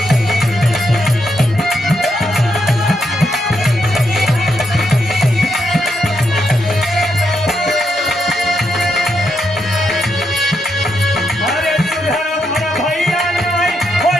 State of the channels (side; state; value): both; normal; correlation 0.81